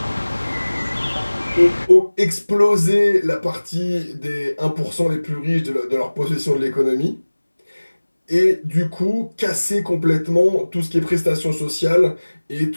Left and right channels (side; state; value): both; inverted; correlation -1.00